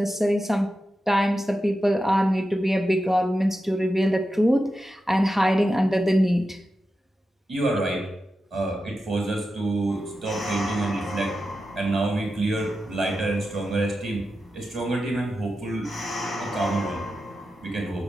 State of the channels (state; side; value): normal; both; correlation 0.90